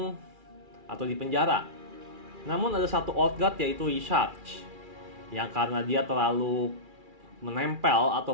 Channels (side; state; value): left; late; 2.4 ms